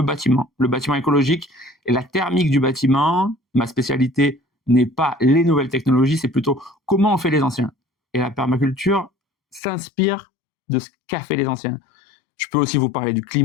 bâtiment écologique et la thermique du bâtiment. Ma spécialité n'est pas les nouvelles technologies, c'est plutôt comment on fait les anciens. Et la permaculture s'inspire de ce qu'a fait les anciens. Je peux aussi vous parler du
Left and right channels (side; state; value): right; drops out; at 9.6 s